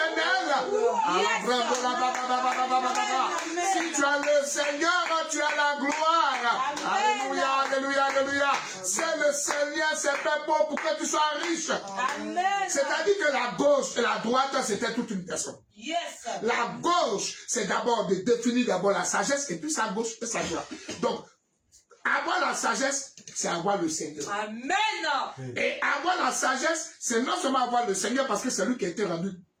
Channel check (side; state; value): both; identical; correlation 1.00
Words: Si tu as le Seigneur, tu as la gloire. Alléluia, alléluia, alléluia. C'est le Seigneur, c'est fait pour que tu sois riche. C'est-à-dire que la gauche et la droite, c'était toute une personne. Yes. La gauche, c'est d'abord de définir d'abord la sagesse et puis sa gauche et sa droite. Donc, avoir la sagesse, c'est avoir le Seigneur. Amen. Et avoir la sagesse, c'est non seulement avoir le Seigneur parce que c'est lui qui a été rendu